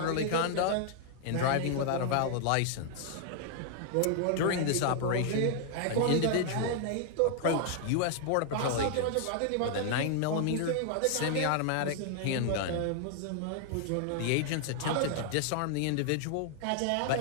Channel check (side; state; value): both; different; correlation 0.00